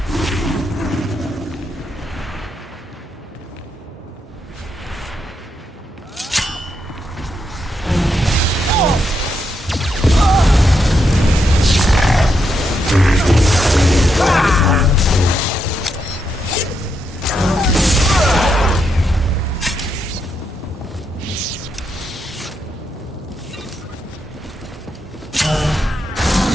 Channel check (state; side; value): normal; both; correlation 0.81